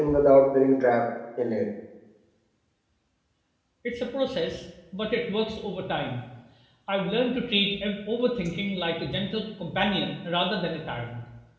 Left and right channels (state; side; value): identical; both; correlation 1.00